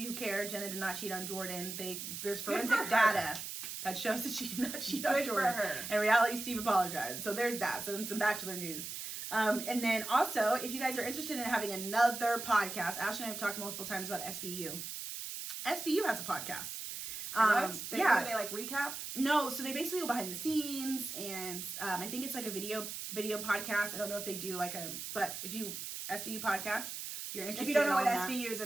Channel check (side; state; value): right; noise; hiss, 7 dB below the sound